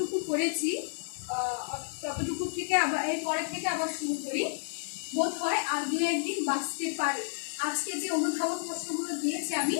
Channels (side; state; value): right; silent; digital silence